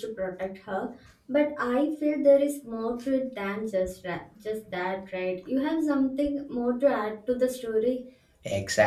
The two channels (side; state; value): both; identical; correlation 1.00